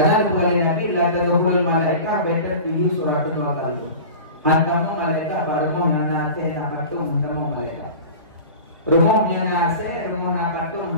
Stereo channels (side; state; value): both; inverted; correlation -0.35